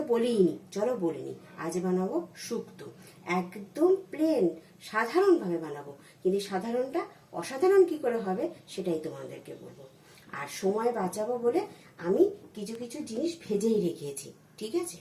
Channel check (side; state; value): both; identical; correlation 1.00